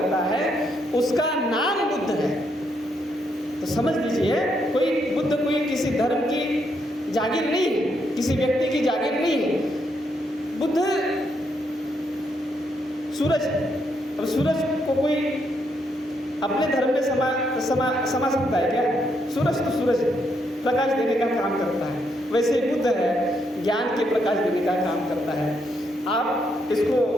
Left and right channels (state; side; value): normal; both; correlation 0.77